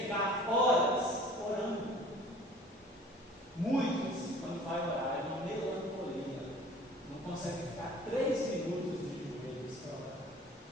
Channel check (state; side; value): normal; both; correlation 0.48